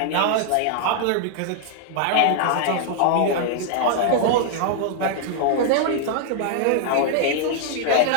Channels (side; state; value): both; different; correlation -0.01